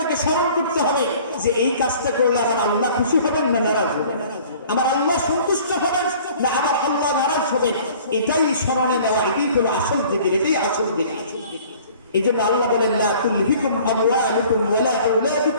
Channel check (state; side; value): inverted; both; correlation -0.50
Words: স্মরণ করতে হবে যে এই কাজটা করলে আমার আল্লাহ খুশি হবেন না নারাজ হবেন, আমার আল্লাহ সন্তুষ্ট হবেন না আমার আল্লাহ নারাজ হবেন, এটাই স্মরণে নেওয়া, এটাই হলো আসল জিকির, এটাই আসল জিকির। এই জন্য আল্লাহ বলেন লা তুলহিকুম আমওয়ালুকুম ওয়ালা